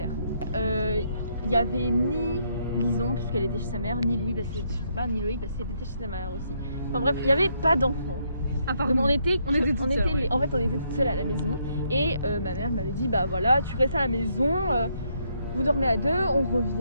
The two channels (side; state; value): both; inverted; correlation -0.74